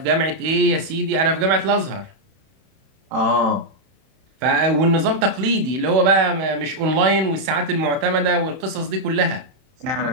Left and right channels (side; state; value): left; late; 31 ms